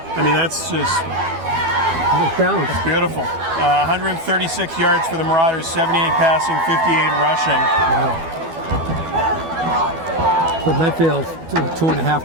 I mean, that's just It's balanced. beautiful. 136 yards for the Marauders, 78 passing, 58 rushing. But Medfield's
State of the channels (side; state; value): left; late; 12 ms